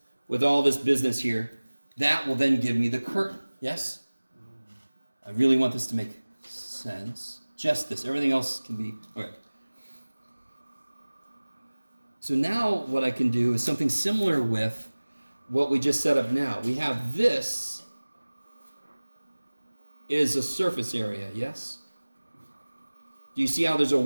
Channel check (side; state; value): both; inverted; correlation -1.00